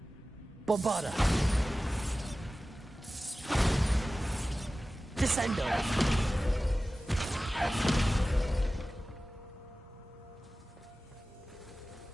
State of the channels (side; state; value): both; normal; correlation 0.96